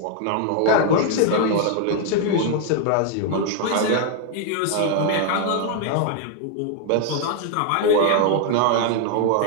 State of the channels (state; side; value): different; both; correlation 0.00